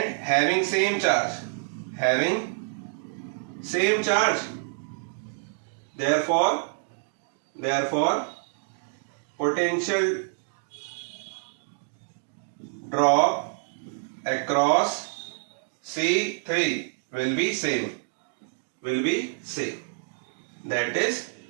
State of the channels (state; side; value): silent; left; digital silence